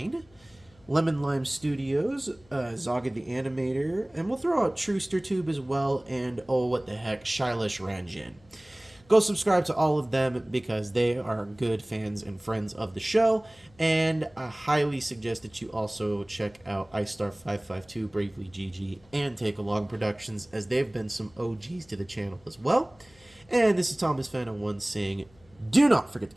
Lemon Lime Studios, Zaga the Animator, and we'll throw out Truster Tube as well, and oh what the heck, Shailesh Ranjan. Go subscribe to all of them because they are good fans and friends of the show. And I highly suggest that you also check out iStar552, Bravely GG, and Take Along Productions, as they've been some OGs to the channel as well. And this is Thomas Fan 01 saying, do not forget to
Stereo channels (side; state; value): left; noise; hum, 29 dB below the sound